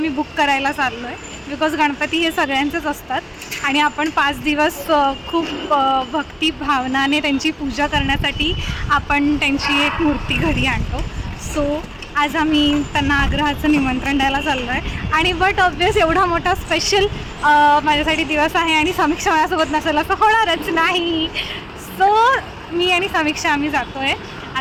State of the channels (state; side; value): identical; both; correlation 1.00